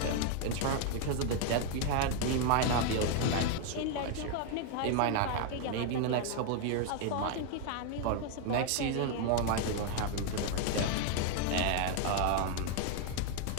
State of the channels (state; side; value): different; both; correlation 0.01